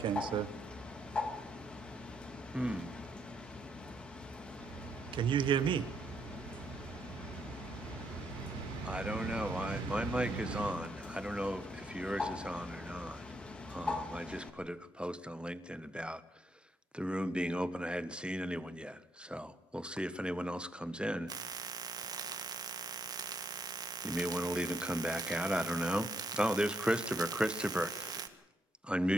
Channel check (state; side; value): normal; both; correlation 0.75